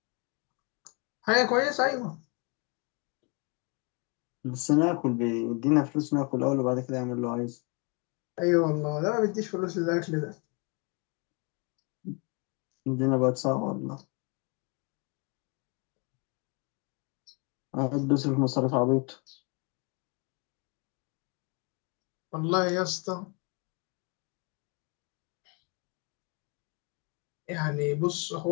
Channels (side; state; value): right; quieter; 32.8 dB